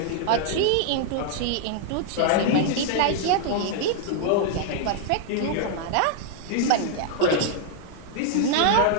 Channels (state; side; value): different; both; correlation 0.00